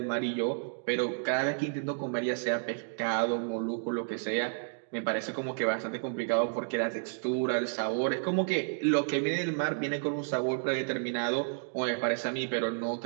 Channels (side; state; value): left; silent; digital silence